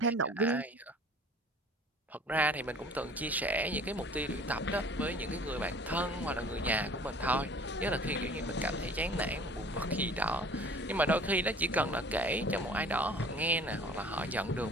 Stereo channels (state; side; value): normal; both; correlation 0.48